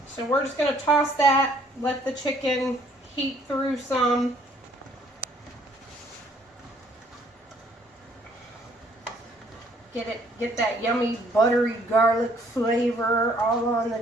So we're just going to toss that, let the chicken heat through some. Get that yummy buttery garlic flavor all on the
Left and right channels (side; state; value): both; normal; correlation 0.62